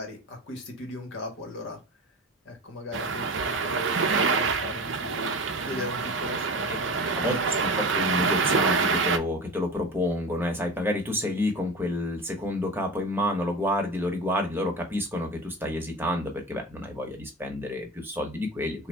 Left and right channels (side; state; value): both; normal; correlation 0.31